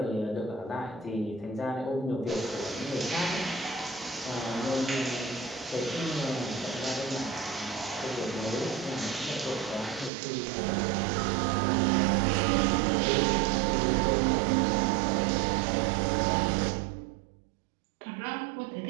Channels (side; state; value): left; drops out; at 10.1 s